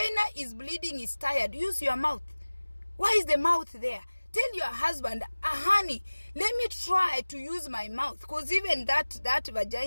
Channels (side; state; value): both; inverted; correlation -1.00